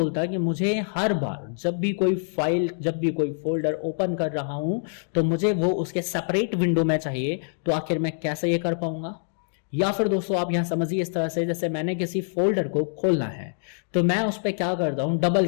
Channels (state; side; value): silent; right; digital silence